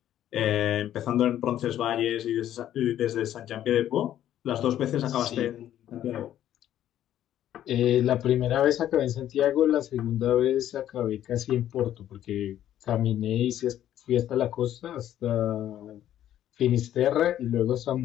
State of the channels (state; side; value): quieter; right; 11.7 dB